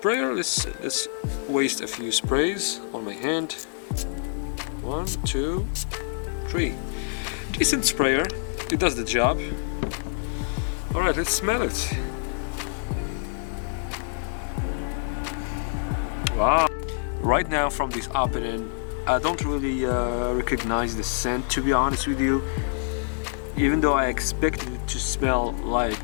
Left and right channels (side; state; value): right; silent; digital silence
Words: Let's waste a few sprays on my hand. 1, 2, 3. Decent sprayer. It does the job. Alright, let's smell it. Wow. Right now from this opening, I don't really recognize the scent, to be honest with you. Even though I expected it to smell